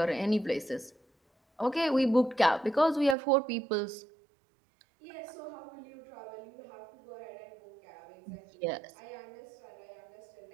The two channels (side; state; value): left; drops out; at 3.2 s